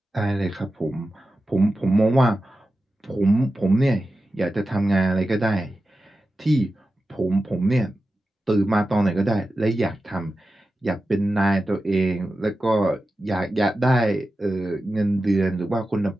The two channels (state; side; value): normal; both; correlation 0.92